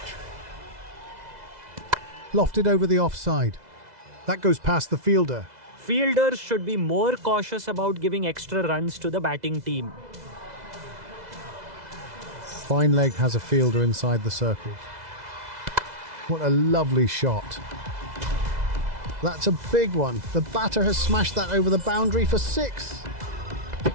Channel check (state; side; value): late; left; 2.0 ms